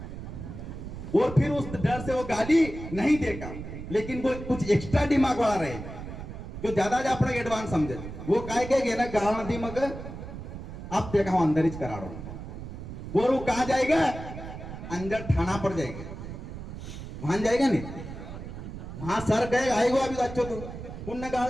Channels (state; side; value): noise; right; rumble, 10 dB below the sound